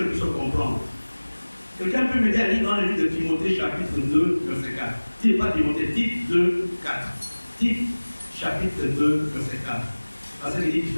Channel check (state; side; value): inverted; both; correlation -1.00